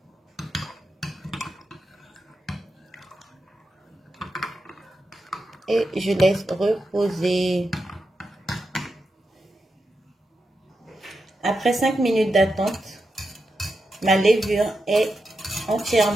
Et je laisse reposer. Après 5 minutes d'attente, ma levure est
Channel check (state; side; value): normal; both; correlation 0.87